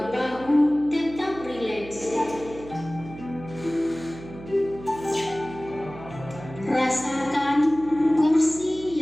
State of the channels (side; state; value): right; noise; hum, 15 dB below the sound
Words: bahu tetap rileks. Rasakan kursi